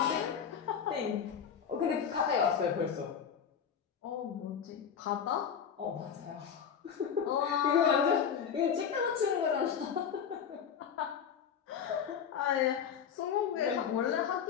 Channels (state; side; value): quieter; right; 7.6 dB